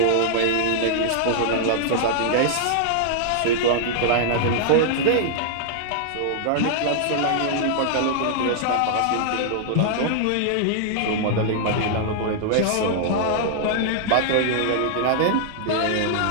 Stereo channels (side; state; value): both; different; correlation -0.01